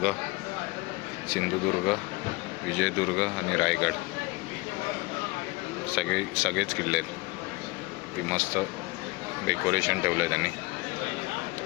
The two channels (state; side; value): quieter; right; 23.7 dB